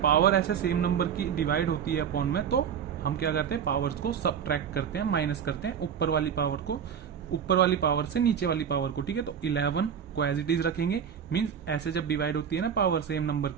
पावर ऐसे सेम नंबर की डिवाइड होती है अपॉन में, तो हम क्या करते हैं पावर्स को सबट्रैक्ट करते हैं, माइनस करते हैं ऊपर वाली पावर को, ऊपर वाली पावर से नीचे वाली पावर को। ठीक है, तो 11 को एज इट इज रखेंगे, मींस ऐसे जब डिवाइड होती है ना पावर सेम नंबर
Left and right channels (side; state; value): left; quieter; 7.9 dB